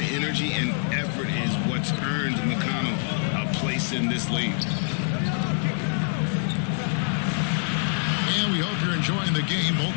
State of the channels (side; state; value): right; silent; 61 dB below the other